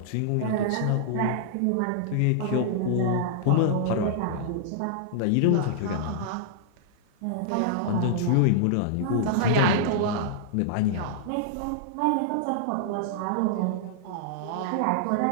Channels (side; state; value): both; different; correlation -0.01